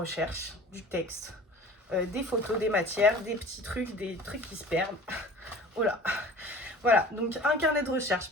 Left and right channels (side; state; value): both; normal; correlation 0.43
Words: du texte, des photos, des matières, des petits trucs, des trucs qui se perdent. Oh là. Voilà, donc un carnet de